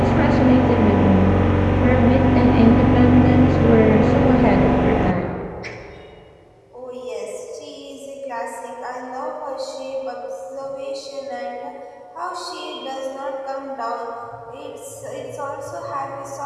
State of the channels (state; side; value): identical; both; correlation 1.00